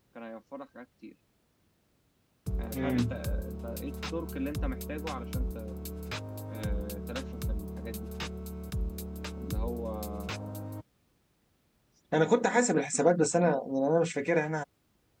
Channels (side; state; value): both; identical; correlation 1.00